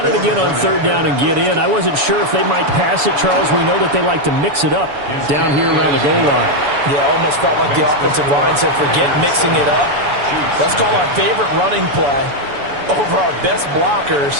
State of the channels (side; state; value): left; late; 7.0 ms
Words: it again on 3rd down and get in. I wasn't sure if they might pass it, Charles. We know that they like to mix it up down here around the goal line. Yeah, almost felt like the offensive line said, forget mixing it up. Let's call our favorite running play over our best